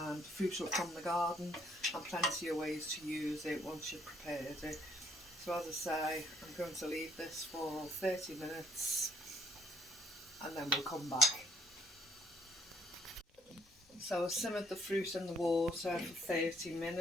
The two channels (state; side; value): normal; both; correlation 0.67